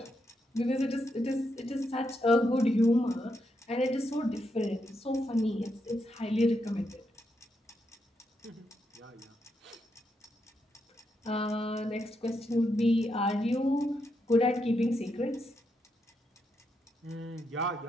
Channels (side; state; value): both; normal; correlation 0.82